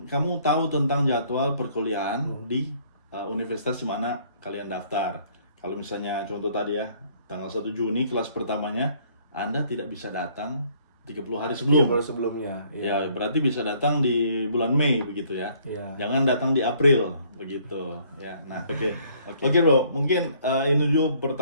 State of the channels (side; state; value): both; inverted; correlation -0.62